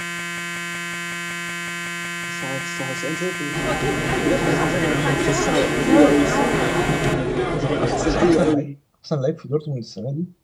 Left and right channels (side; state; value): both; identical; correlation 1.00